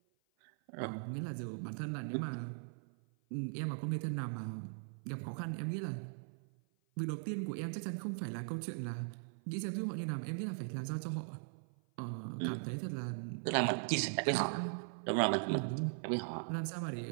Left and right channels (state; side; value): silent; left; 51 dB below the other